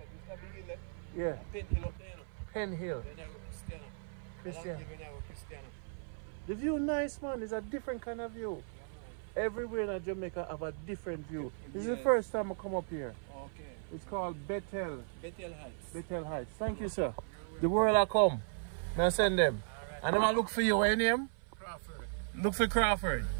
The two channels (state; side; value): silent; left; 54 dB below the other